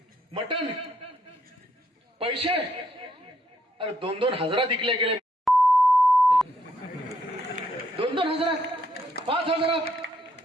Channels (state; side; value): normal; both; correlation 0.73